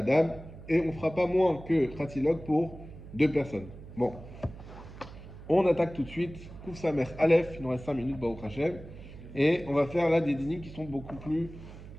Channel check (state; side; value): noise; right; hum, 15 dB below the sound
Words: on ne fera pas moins que Khatsilog pour 2 personnes. Bon. On attaque tout de suite. Kouf Samer Aleph, il nous reste 5 minutes, Baruch Hashem. Et on va faire là des dîners qui sont beaucoup plus